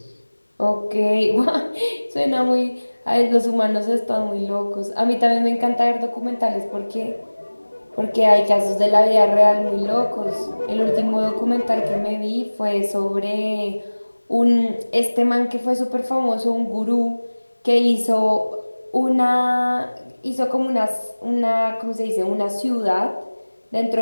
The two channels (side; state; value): both; inverted; correlation -1.00